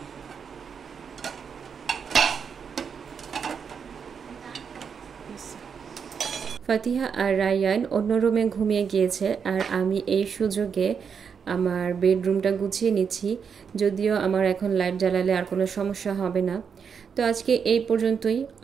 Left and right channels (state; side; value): quieter; left; 6.6 dB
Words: ফাতিহা আর রায়ান অন্য রুমে ঘুমিয়ে গিয়েছে, আর আমি এই সুযোগে আমার বেডরুমটা গুছিয়ে নিচ্ছি। যদিও আমার এখন লাইট জ্বালালে আর কোনো সমস্যা হবে না। তো আজকে এই পর্যন্তই।